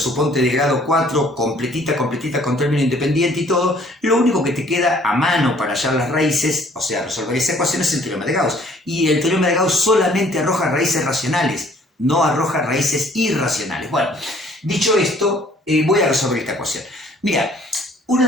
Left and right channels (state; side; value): normal; both; correlation 0.59